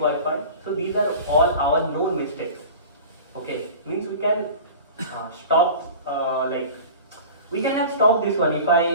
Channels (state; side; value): inverted; both; correlation -0.37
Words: So these are all our known mistakes. Okay, means we can stop We can have stopped this one. If